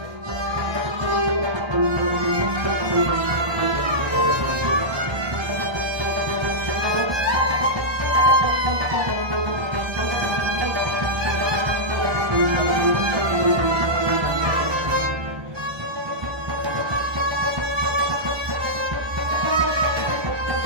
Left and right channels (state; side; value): late; left; 1.3 ms